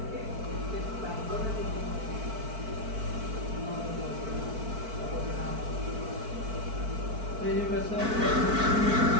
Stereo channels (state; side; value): late; left; 4.5 ms